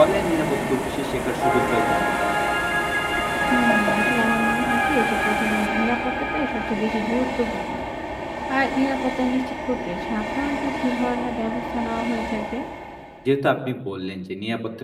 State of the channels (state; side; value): identical; both; correlation 1.00